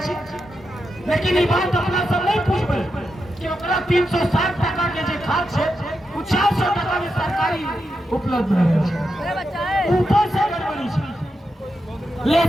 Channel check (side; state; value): both; normal; correlation 0.86